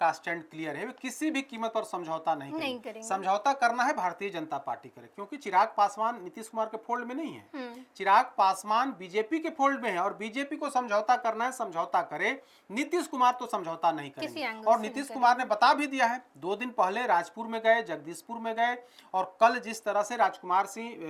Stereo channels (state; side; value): identical; both; correlation 1.00